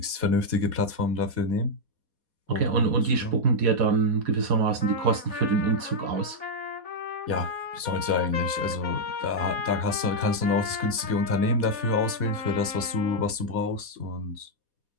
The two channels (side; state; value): left; late; 4.1 ms